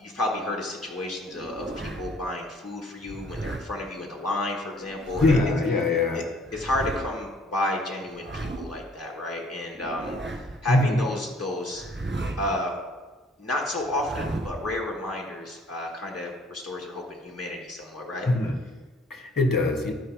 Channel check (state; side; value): normal; both; correlation 0.58